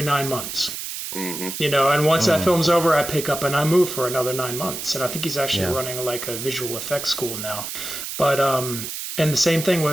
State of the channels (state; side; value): noise; right; hiss, 7 dB below the sound